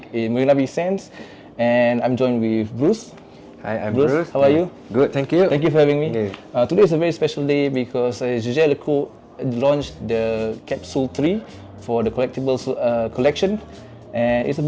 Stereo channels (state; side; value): identical; both; correlation 1.00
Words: in Marina Bay Sands, and I'm joined with Bruce. Hi, I'm Bruce. How are you? Good, thank you. Thank you for having me. Yeah. Today is a very special day because Jaeger-Lecoultre launched the Capsule 3 for the Collectibles collection. And it's a